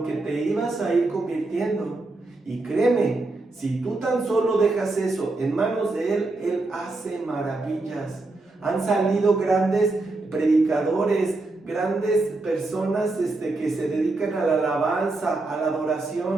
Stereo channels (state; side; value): quieter; left; 3.2 dB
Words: que te ibas a ir convirtiendo. Y créeme, si tú tan solo dejas eso en manos de Él, Él hace maravillas. Han salido grandes predicadores, grandes personas que se dedican a la alabanza, a la